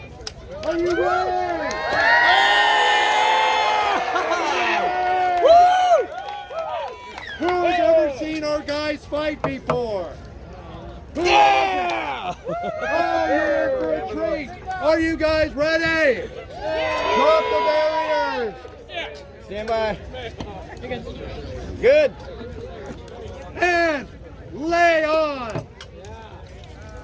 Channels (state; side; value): identical; both; correlation 1.00